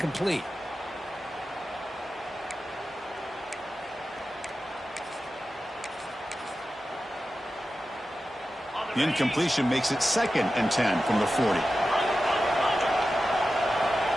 The incompletion makes it 2nd and 10 from the 40.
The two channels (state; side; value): normal; both; correlation 0.93